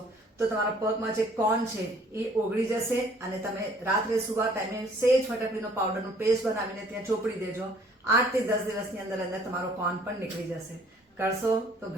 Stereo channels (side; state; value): both; normal; correlation 0.58